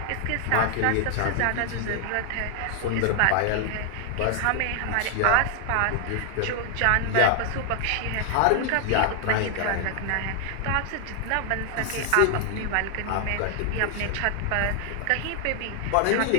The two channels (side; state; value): both; different; correlation 0.00